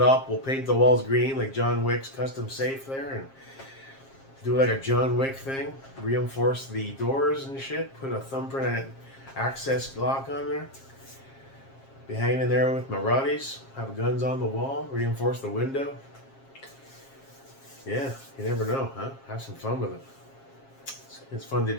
up. We'll paint the walls green like John Wick's custom safe there, and do like a John Wick thing. Reinforce the doors and shit. Put a thumbprint access lock on there. Be hanging in there with my Roddies. Have guns on the wall. Reinforce the window. Yeah, you never know, huh? Have some fun with it. It's fun to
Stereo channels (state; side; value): late; right; 7.4 ms